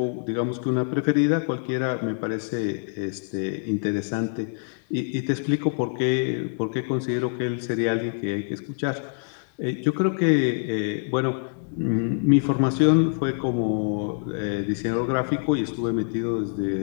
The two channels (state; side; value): silent; right; 62 dB below the other